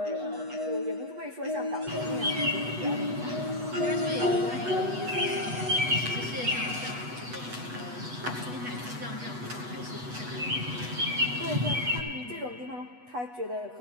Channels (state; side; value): late; left; 8.2 ms